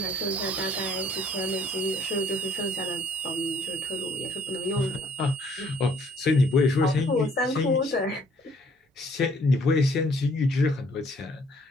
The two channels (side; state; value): both; normal; correlation 0.61